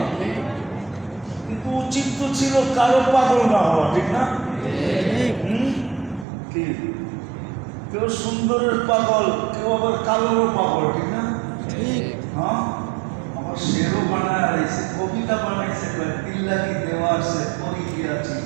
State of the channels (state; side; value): drops out; left; at 6.2 s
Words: কিন্তু উচিত তো ছিল কারো পাগল না হওয়া, ঠিক না? কি কেউ সুন্দরের পাগল, কেউ আবার কালোরও পাগল, ঠিক না? হ্যাঁ, আমার শেরও বানায় রয়েছে, কবিতা বানাইছে, দিল্লা কি দেওয়ার সে পরি গিয়া